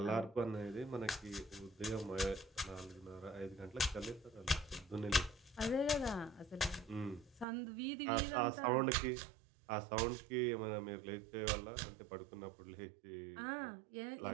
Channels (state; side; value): drops out; left; at 7.5 s